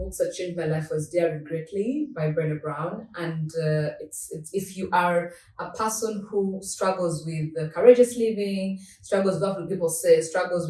books that changed my life was Daring Greatly by Brené Brown, and it's if you are a person who struggles with courageous living, struggles with what people say, struggles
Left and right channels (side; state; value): both; identical; correlation 1.00